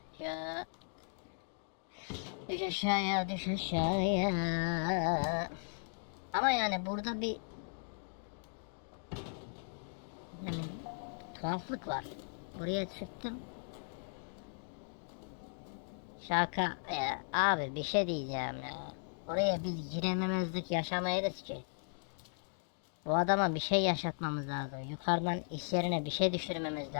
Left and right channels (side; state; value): right; silent; digital silence